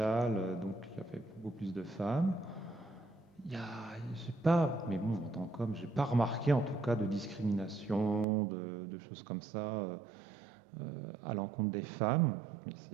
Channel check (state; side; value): drops out; left; at 8.2 s